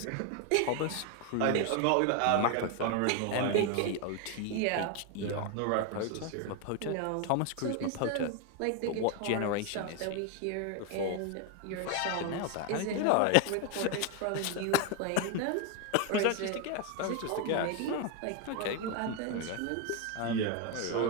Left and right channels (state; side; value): different; both; correlation 0.01